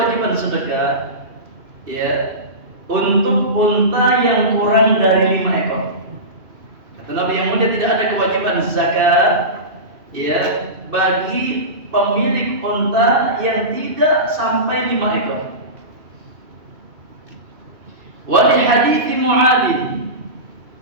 sedekah ya untuk unta yang kurang dari 5 ekor. Kata Nabi yang mulia, tidak ada kewajiban zakat ya bagi pemilik unta yang tidak sampai 5 ekor. Wali hadits Mu'adz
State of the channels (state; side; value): late; left; 2.6 ms